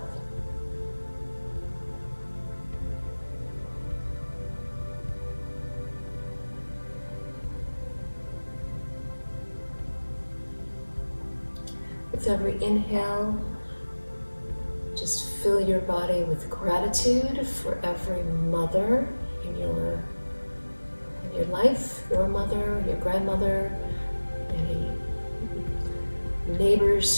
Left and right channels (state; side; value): inverted; both; correlation -1.00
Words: With every inhale, just fill your body with gratitude for every mother in your life, your mother, your grandmother, any